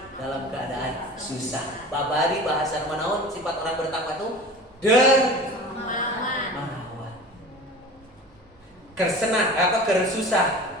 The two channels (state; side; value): normal; both; correlation 0.37